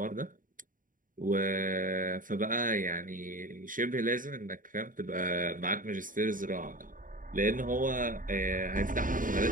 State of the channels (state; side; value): late; left; 0.39 ms